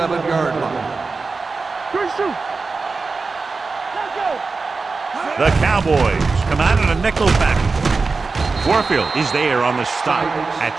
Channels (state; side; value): quieter; left; 4.2 dB